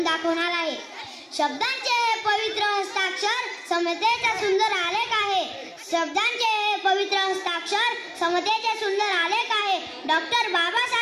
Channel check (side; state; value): both; identical; correlation 1.00